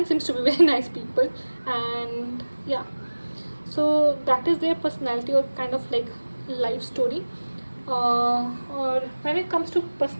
seems to be very nice people. And yeah, so that is their personality or kind of like life story. Or when it comes to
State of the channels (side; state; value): both; inverted; correlation -1.00